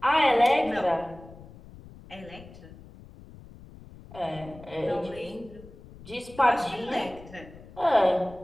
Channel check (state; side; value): noise; left; rumble, 19 dB below the sound